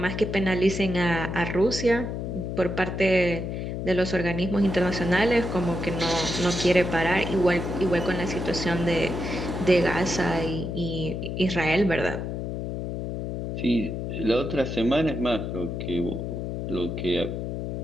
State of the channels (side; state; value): left; noise; hum, 4 dB below the sound